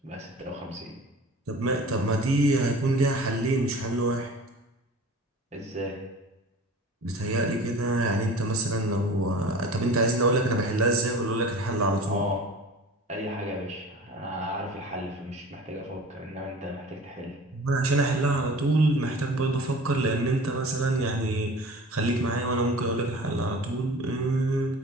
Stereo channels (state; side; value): normal; both; correlation 0.40